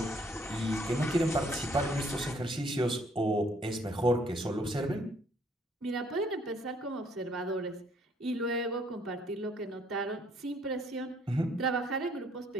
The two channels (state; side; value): normal; both; correlation 0.64